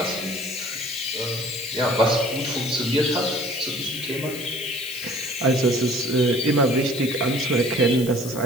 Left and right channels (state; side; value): noise; left; hiss, 12 dB below the sound